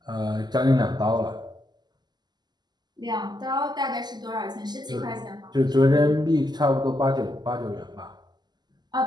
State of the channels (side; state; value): left; late; 0.21 ms